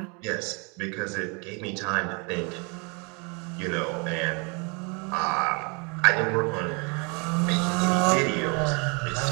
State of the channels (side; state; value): left; quieter; 32.3 dB